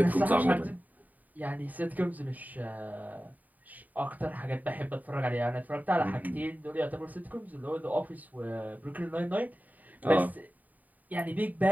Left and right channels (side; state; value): left; late; 0.078 ms